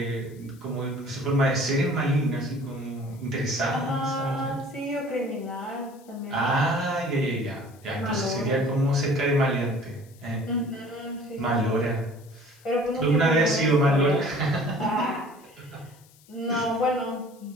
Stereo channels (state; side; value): noise; left; hiss, 27 dB below the sound